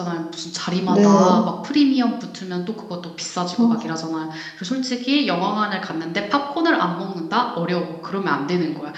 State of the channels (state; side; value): identical; both; correlation 1.00